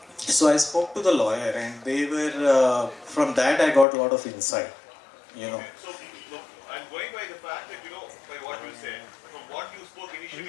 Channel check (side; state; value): right; drops out; at 3.9 s